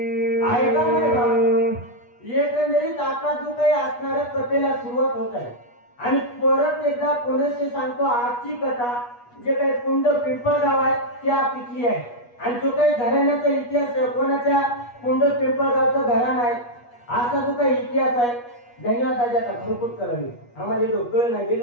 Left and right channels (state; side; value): late; right; 8.3 ms